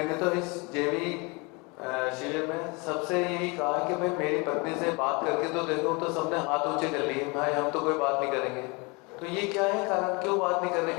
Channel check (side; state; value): right; quieter; 28.4 dB